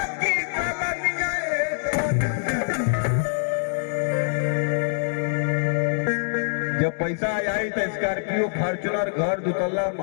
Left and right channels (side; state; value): right; silent; digital silence